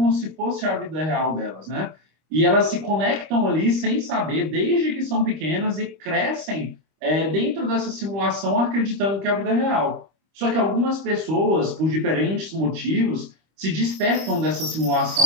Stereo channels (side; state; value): left; late; 25 ms